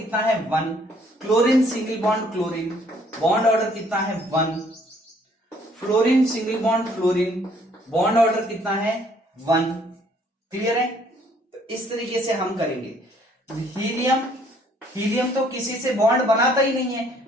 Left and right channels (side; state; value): both; normal; correlation 0.63